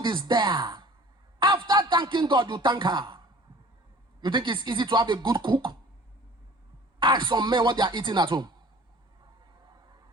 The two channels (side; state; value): both; normal; correlation 0.47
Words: is there. After thanking God, you thank her. You think it's easy to have a good cook? Ask some men what they are eating at home.